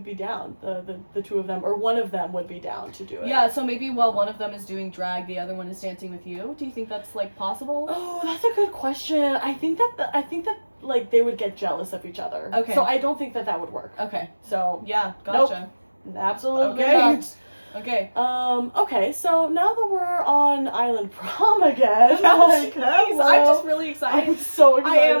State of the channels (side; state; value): both; inverted; correlation -1.00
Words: be down. The two of them, or one of them would be down to do it. Yeah, so maybe while one of them is doing drag, the other one is dancing with you. Do you think that's like possible? Oh, that's a good question. I think that like they would get jealous of each other. Okay. So I don't think that would work. Okay. So Yeah, gotcha. Absolutely Okay. not. Okay. Okay, so now that we're on Island Prom again, Jeez, I'm just really excited. I'm so excited. I am